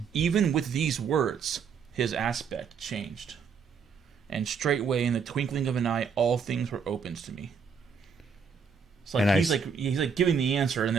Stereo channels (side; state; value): left; quieter; 6.0 dB